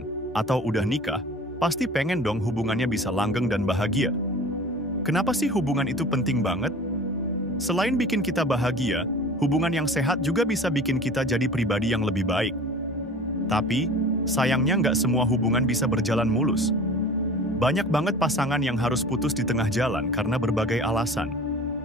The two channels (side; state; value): both; normal; correlation 0.41